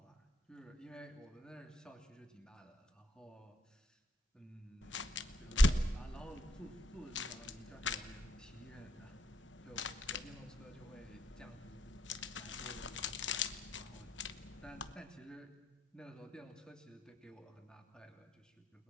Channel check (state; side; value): normal; both; correlation 0.75